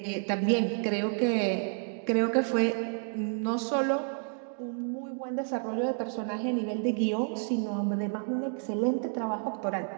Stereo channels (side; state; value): left; silent; 58 dB below the other